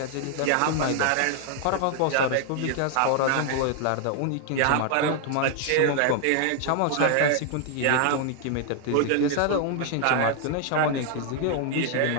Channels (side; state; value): both; different; correlation 0.00